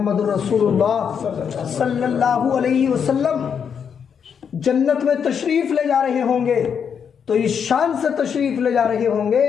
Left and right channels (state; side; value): quieter; right; 7.2 dB